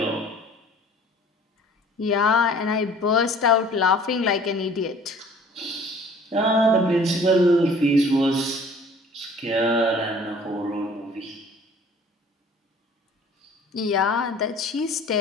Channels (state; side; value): normal; both; correlation 0.50